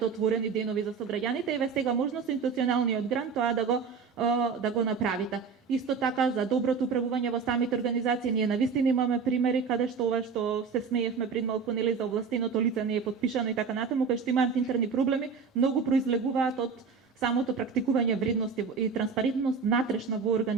отворени денови за сограѓаните, еве сега можно со институционалниот грант тоа да го направите. Исто така за доброто управување во самите организации, ние навистина имаме примери каде што ова што се смеевме пред малку нели за овластеното лице не е потпишано и така натаму, кај што имаат интерни проблеми, многу произлегуваат од самото практикување вредности и транспарентност натрешна во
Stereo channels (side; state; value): left; quieter; 5.6 dB